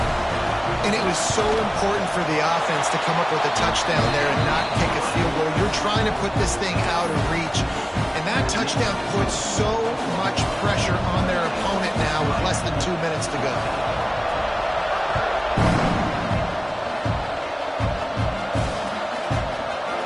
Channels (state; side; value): identical; both; correlation 1.00